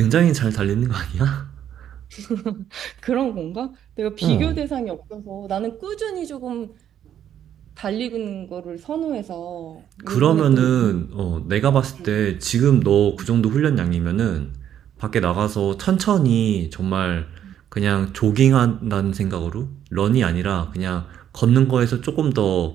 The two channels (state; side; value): quieter; left; 10.1 dB